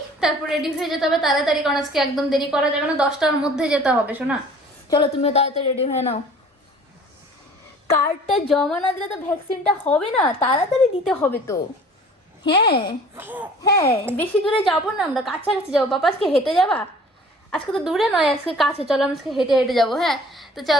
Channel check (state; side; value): normal; both; correlation 0.48